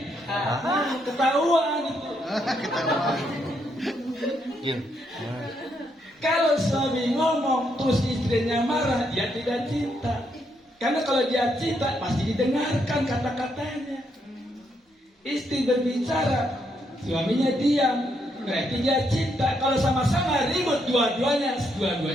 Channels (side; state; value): both; normal; correlation 0.76